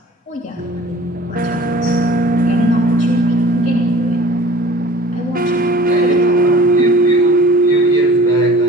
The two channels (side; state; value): both; normal; correlation 0.45